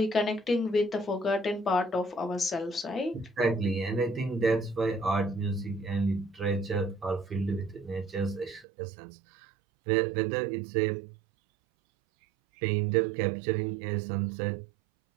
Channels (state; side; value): drops out; left; at 8.7 s